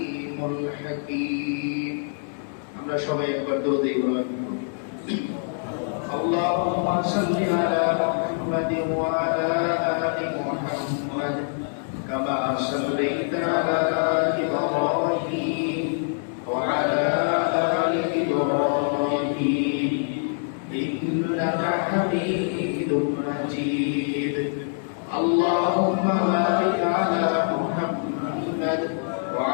الحكيم. আমরা সবাই একবার দরুদ ইব্রাহিম اللهم صل على محمد وعلى آل محمد كما صليت على إبراهيم وعلى آل إبراهيم إنك حميد مجيد. اللهم بارك على محمد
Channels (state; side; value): silent; right; 62 dB below the other